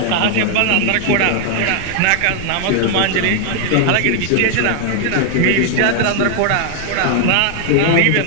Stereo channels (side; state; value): both; different; correlation 0.00